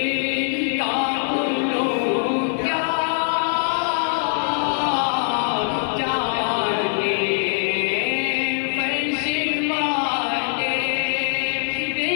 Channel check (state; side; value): silent; right; digital silence